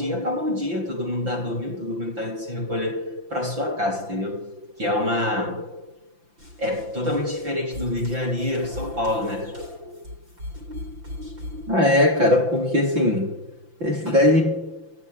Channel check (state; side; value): late; left; 5.8 ms